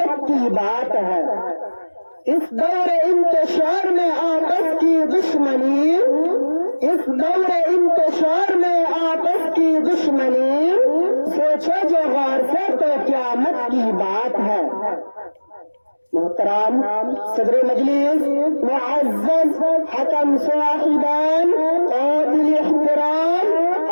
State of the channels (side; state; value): both; inverted; correlation -1.00